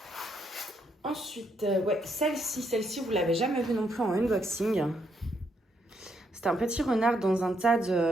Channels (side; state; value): both; normal; correlation 0.76